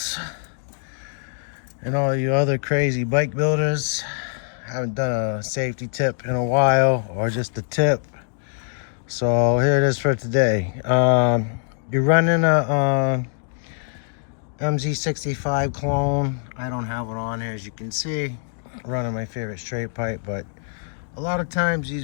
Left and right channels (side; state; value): right; silent; digital silence